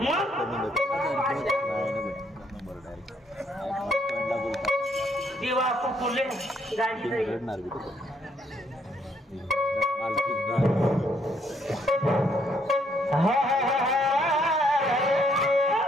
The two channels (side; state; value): both; normal; correlation 0.69